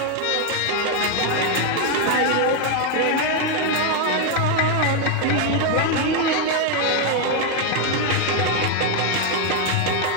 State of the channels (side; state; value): both; different; correlation 0.01